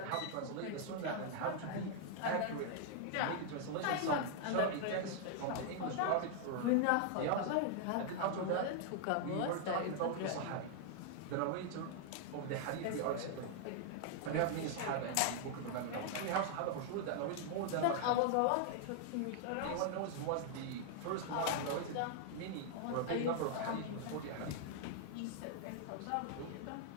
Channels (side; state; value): both; different; correlation 0.00